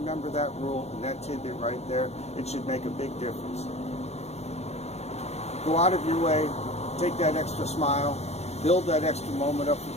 that rule and that tidbit right there, it should make a big difference. Go out of your way, take that extra smile, build that extra moment up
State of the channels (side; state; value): right; late; 0.31 ms